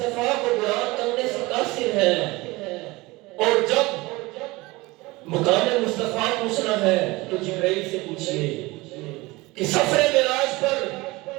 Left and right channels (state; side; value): quieter; left; 22.0 dB